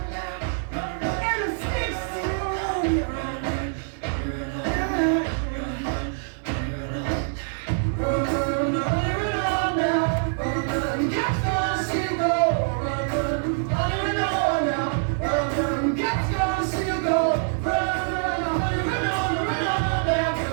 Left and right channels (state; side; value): silent; left; digital silence